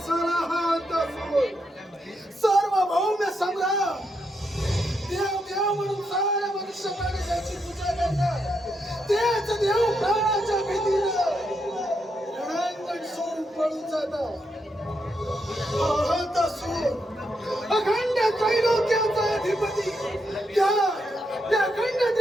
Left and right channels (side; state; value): both; normal; correlation 0.81